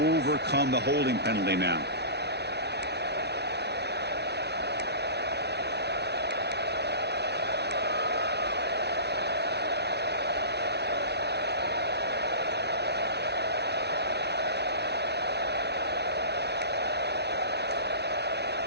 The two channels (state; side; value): late; left; 0.49 ms